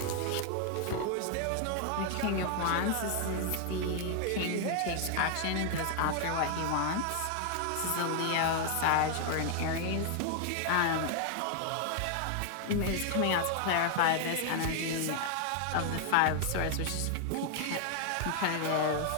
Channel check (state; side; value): different; both; correlation 0.00